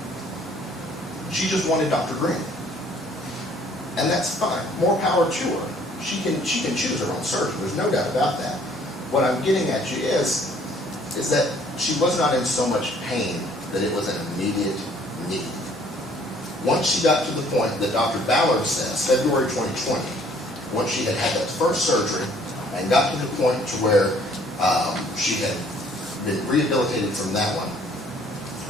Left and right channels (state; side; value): normal; both; correlation 0.59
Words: She just wanted Dr. Green. And that's fine. More power to her. She can choose her own surgeon. There's no doubt about that. What I'm getting at you is that she was not in so much pain that it was an immediate need. Once she got to the point that Dr. Ballard says, February 2020, once she had had that first surgery and got to the point to where she had been rehabilitated from that one